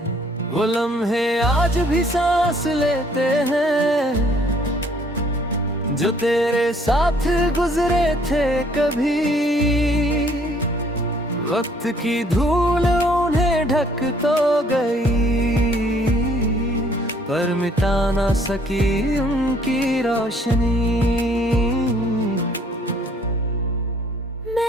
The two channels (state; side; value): normal; both; correlation 0.62